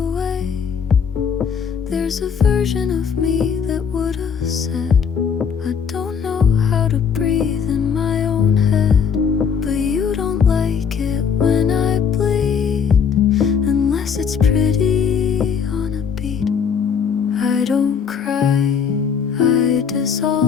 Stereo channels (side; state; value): right; quieter; 6.8 dB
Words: There's a version of me that would have said, I don't know how to breathe in my own head. But you don't like it when I bleed, unless it's pretty on a beat. I don't cry, I